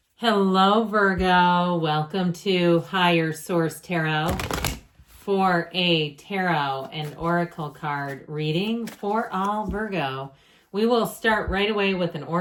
Hello, Virgo. Welcome to Higher Source Tarot for a tarot and oracle card reading for all Virgo. We will start right away with an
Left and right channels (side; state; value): both; identical; correlation 1.00